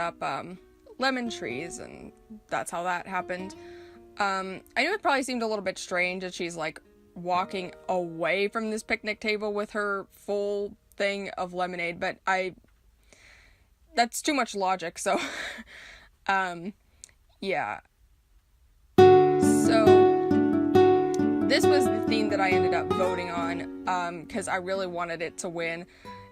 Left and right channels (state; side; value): identical; both; correlation 1.00